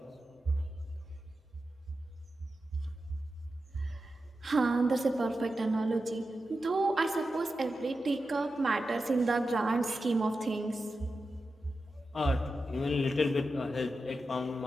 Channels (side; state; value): both; normal; correlation 0.91